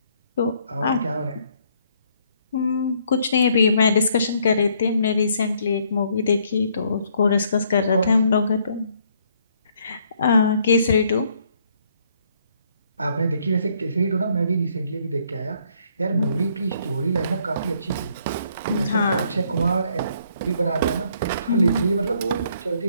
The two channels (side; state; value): both; inverted; correlation -0.67